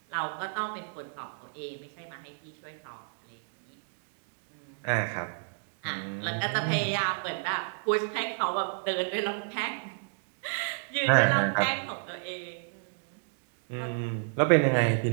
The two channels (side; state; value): left; silent; digital silence